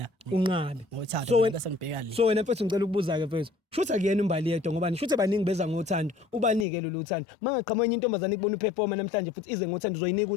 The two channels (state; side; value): drops out; right; at 6.7 s